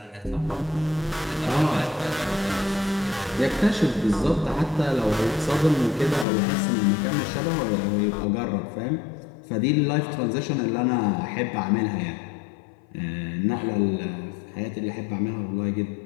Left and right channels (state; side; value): drops out; right; at 6.2 s